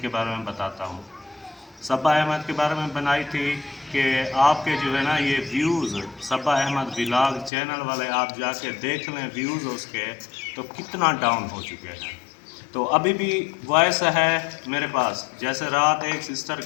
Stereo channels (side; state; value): right; drops out; at 7.5 s